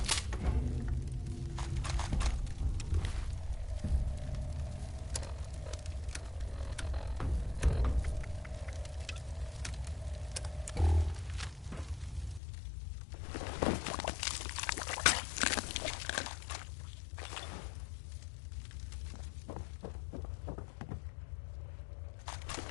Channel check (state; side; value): drops out; right; at 12.4 s